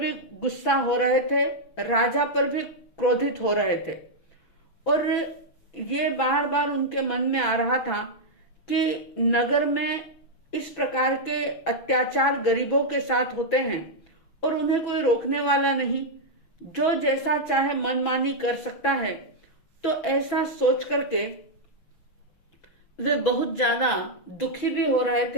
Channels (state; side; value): late; right; 6.0 ms